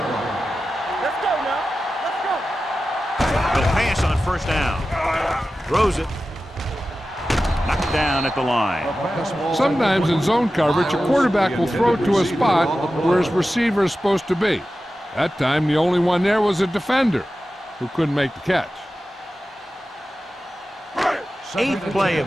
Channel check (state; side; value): normal; both; correlation 0.94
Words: line. Let's go now. Let's go. He'll pass on first down. Throws it. Knocked down at the line. Sometimes in zone coverage, a quarterback will throw to a spot where his receiver is supposed to be. That time, the only one there was a defender who couldn't make the catch. 8th play